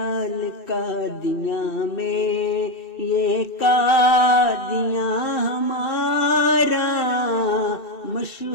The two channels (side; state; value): right; late; 2.7 ms